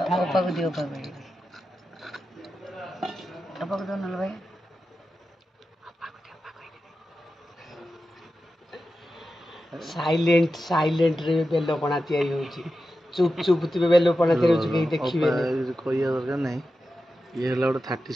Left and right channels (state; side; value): normal; both; correlation 0.91